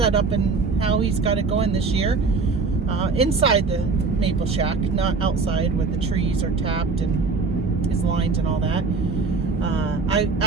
and how he's got it going this year inside the maple shack, not outside where the trees are tapped and his lines and all that. I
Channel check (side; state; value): left; quieter; 4.4 dB